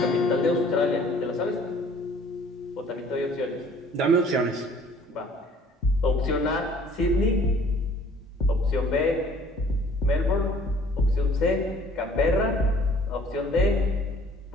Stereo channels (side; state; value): both; normal; correlation 0.55